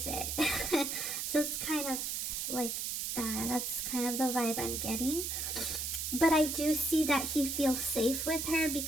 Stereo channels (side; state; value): right; noise; hiss, 2 dB below the sound